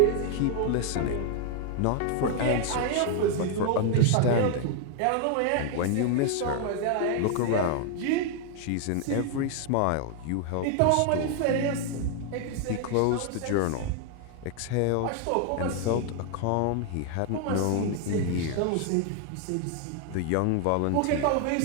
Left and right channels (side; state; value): both; different; correlation 0.00